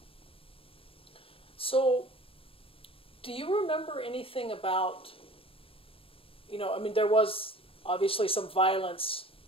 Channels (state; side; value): late; right; 0.27 ms